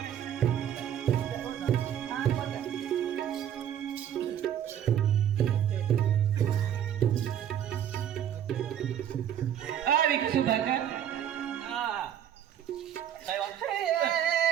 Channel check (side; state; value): left; quieter; 9.9 dB